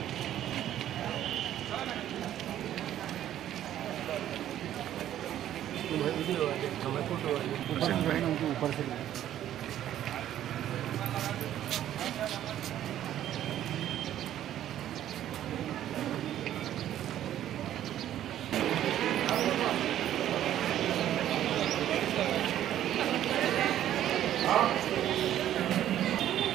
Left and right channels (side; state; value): left; quieter; 11.8 dB